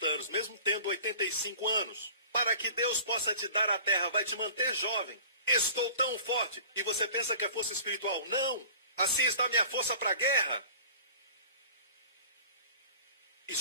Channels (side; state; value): both; inverted; correlation -0.45